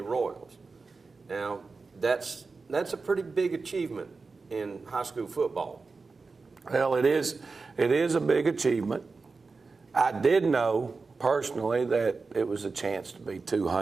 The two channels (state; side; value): quieter; left; 4.2 dB